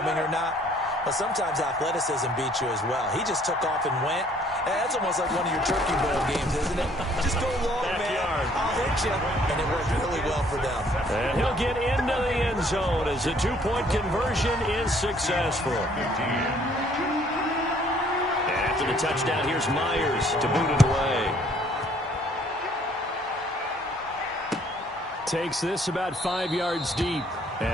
or not. Well, sometimes athleticism beats you as well. He just took off and went. And that's almost like one of your Turkey Bowl games, isn't it? Just go long, man. I'll hit you. And it worked really well for them. And he'll get into the end zone as a 2-point conversion is successful. After the touchdown, here's Myers to boot it away. Takes this about 5 yards deep.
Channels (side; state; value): both; normal; correlation 0.61